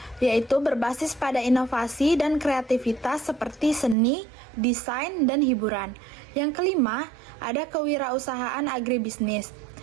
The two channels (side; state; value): left; drops out; at 4.0 s